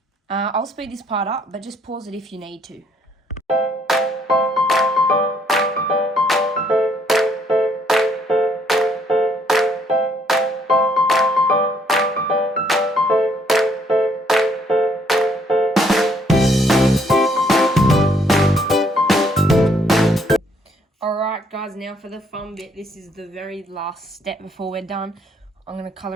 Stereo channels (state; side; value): normal; both; correlation 0.68